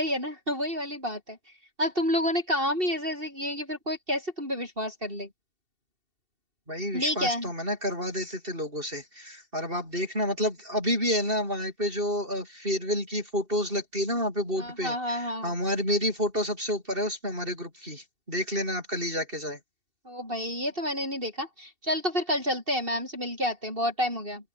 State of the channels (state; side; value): late; left; 2.7 ms